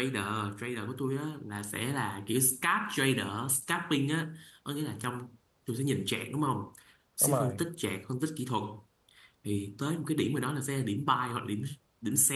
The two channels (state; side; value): identical; both; correlation 1.00